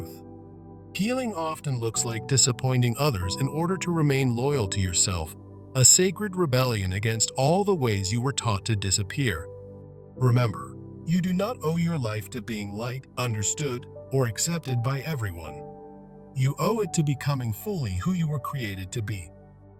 Healing often looks like disappointing others in order to remain loyal to yourself, a sacred rebellion against all the ways you were taught to disappear. Remember, you do not owe your life to being liked, understood, or accepted by everyone. You owe it to becoming fully who you were created to be.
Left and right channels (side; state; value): both; identical; correlation 1.00